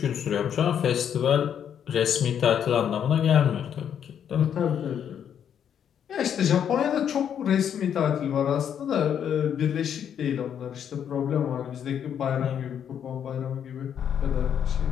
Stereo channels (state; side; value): quieter; right; 8.7 dB